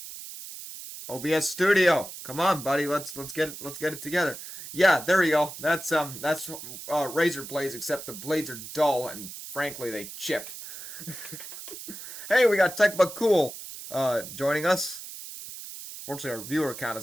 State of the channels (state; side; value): noise; right; hiss, 11 dB below the sound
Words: OBS Studio, come on, buddy. Let's get it together. Yeah, there we go. That's razor blades, except the blades are dull and frankly they chipped. Hey, we got Tech But Cool joining us. Fortunately, our viewer count